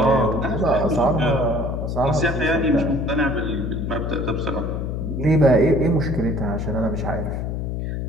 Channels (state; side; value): noise; left; hum, 3 dB below the sound